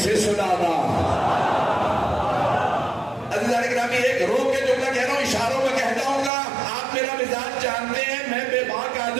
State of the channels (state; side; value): drops out; left; at 6.3 s